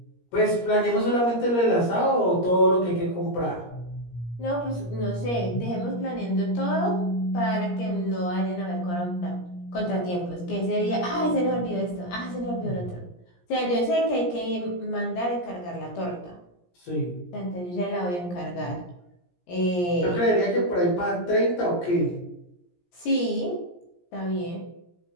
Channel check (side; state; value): right; late; 17 ms